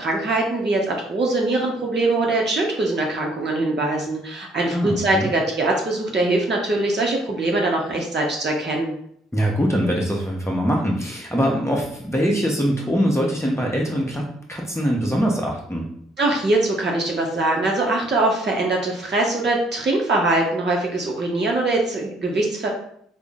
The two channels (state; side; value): normal; both; correlation 0.67